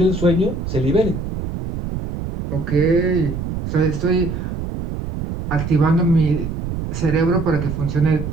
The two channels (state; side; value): noise; right; rumble, 5 dB below the sound